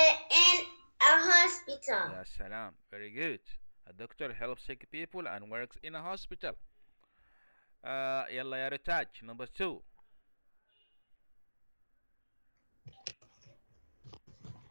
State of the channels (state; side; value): inverted; both; correlation -1.00